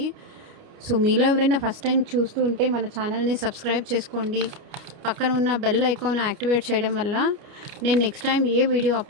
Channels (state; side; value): late; left; 29 ms